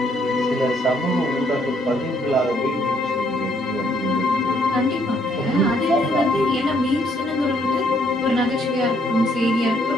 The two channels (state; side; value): normal; both; correlation 0.69